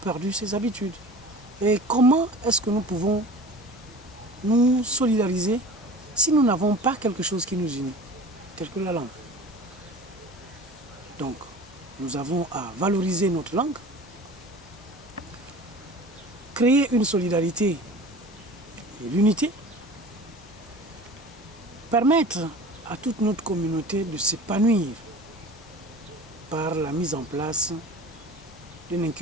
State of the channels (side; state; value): both; normal; correlation 0.39